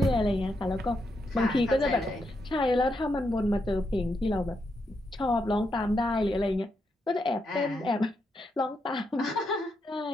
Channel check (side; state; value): both; normal; correlation 0.82